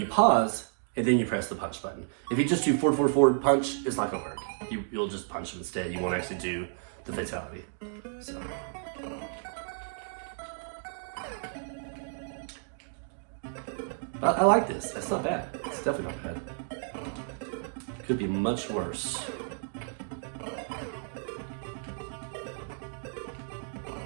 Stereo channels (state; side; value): silent; left; 57 dB below the other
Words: pause, and then you press the punch button. If you just do forward, forward, forward, punch, it's not gonna work. You'll just punch him instead. You won't actually do the fatality. So. I like this. That's not bad. It's definitely not bad. Could be much worse.